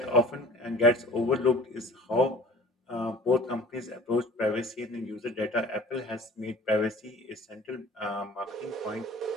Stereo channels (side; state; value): both; normal; correlation 0.46